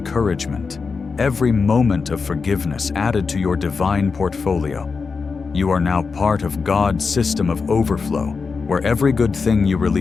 every moment of forgiveness added to your divine portfolio? You are now part of God's system of overflow, where every good thing you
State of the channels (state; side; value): quieter; right; 4.9 dB